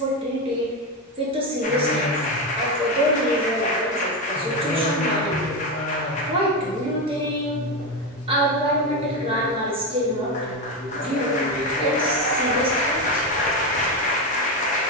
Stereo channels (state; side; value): normal; both; correlation 0.13